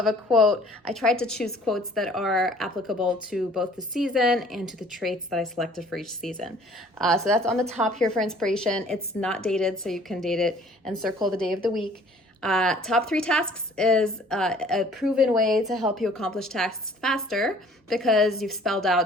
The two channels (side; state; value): both; normal; correlation 0.54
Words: a quote. I tried to choose quotes that are applicable to both the season and to the traits that I selected for each season. So that's on the top here for inspiration. It's not dated, so you can date it and circle the day of the week. Top 3 tasks is a proven way to help you accomplish tasks faster, because you've spelled